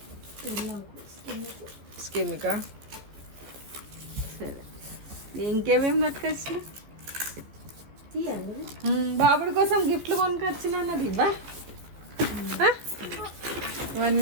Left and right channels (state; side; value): late; left; 15 ms